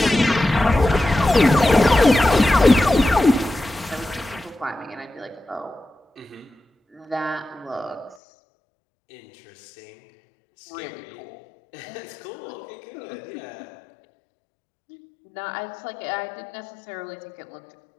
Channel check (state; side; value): drops out; right; at 8.2 s